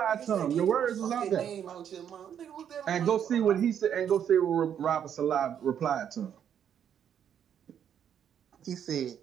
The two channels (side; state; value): left; quieter; 8.9 dB